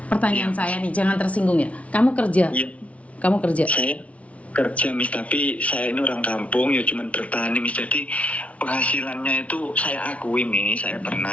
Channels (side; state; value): right; late; 0.065 ms